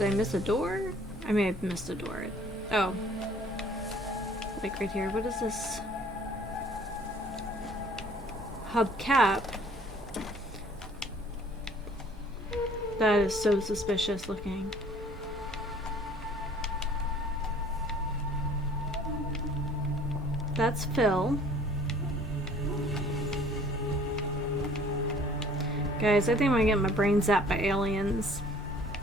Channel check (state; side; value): normal; both; correlation 0.54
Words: I miss a door? I may have missed a door. Oh. Like right here. What is this? Hubcap. That is so suspicious looking. That's Phil. Guys, I think I'm gonna get my brain zapped by aliens.